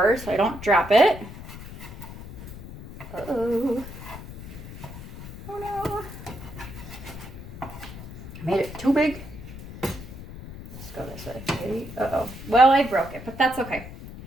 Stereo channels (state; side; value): noise; left; rumble, 13 dB below the sound